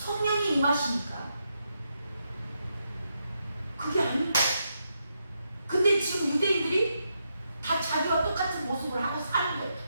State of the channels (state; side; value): inverted; both; correlation -0.82